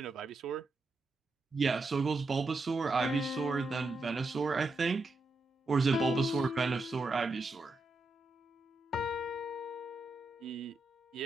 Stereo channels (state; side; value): quieter; left; 3.0 dB